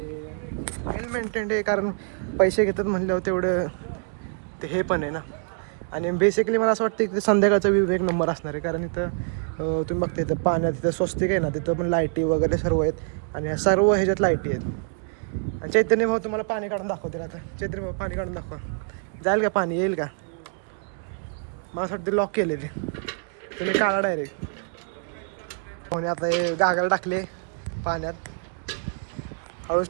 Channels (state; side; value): silent; left; 61 dB below the other